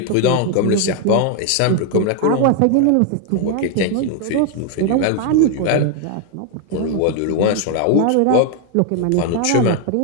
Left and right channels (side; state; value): both; different; correlation 0.01